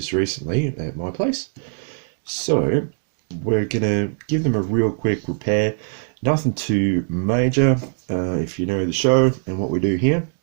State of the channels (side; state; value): left; silent; 57 dB below the other